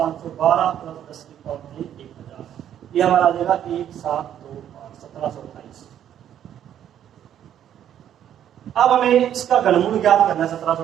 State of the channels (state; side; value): quieter; left; 10.3 dB